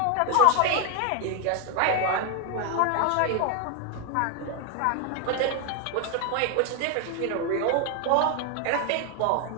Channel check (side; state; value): both; different; correlation 0.01